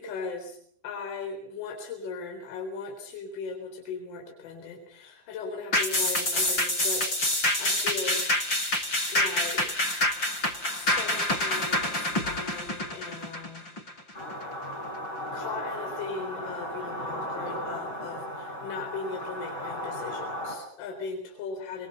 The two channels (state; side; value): late; right; 5.7 ms